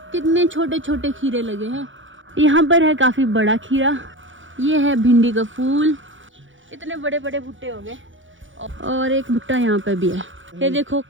कितने छोटे छोटे खीरे लगे हैं। यहाँ पर है काफ़ी बड़ा खीरा, ये है भिंडी का फूल, इतने बड़े बड़े भुट्टे हो गए। और एक भुट्टा यहाँ पे भी है। ये देखो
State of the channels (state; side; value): late; left; 0.56 ms